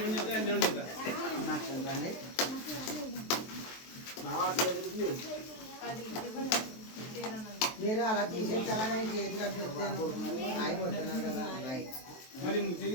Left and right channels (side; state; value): right; late; 23 ms